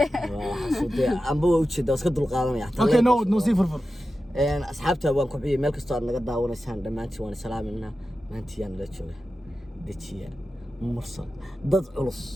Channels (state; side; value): normal; both; correlation 0.92